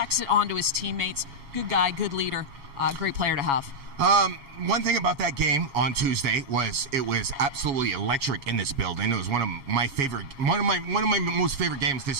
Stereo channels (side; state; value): left; late; 7.2 ms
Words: it onto his teammates. Good guy, good leader, great player to have. One thing about that game on Tuesday was it was absolutely electric in this building. It was one of my most favorite games